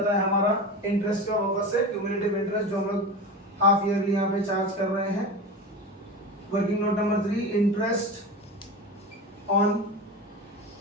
है हमारा इंटरेस्ट का वापस से क्यूमुलेटिव इंटरेस्ट जो हम लोग हाफ ईयरली यहाँ पे चार्ज कर रहे हैं। Working note number 3, interest on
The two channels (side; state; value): both; normal; correlation 0.27